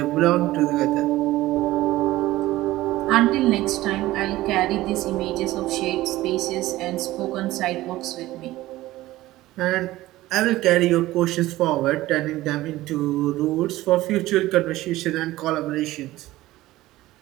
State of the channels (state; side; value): quieter; left; 16.8 dB